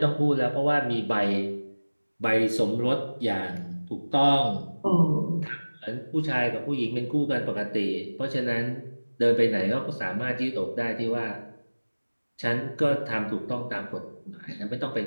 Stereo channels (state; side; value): inverted; both; correlation -1.00